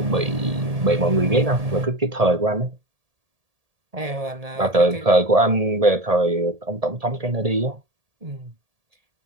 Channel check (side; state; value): left; late; 1.7 ms